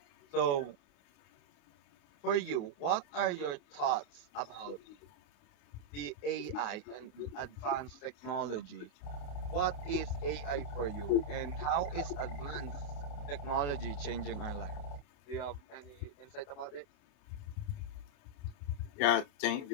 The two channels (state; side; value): late; right; 28 ms